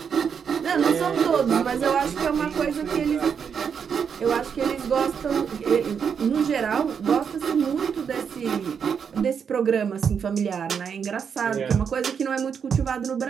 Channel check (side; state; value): left; quieter; 7.0 dB